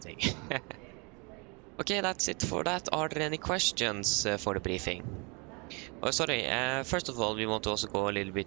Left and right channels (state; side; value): quieter; left; 31.4 dB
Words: Okay, that's it for that. Are there any questions for the briefing? Oh, sorry. First of all, we want to also go a little bit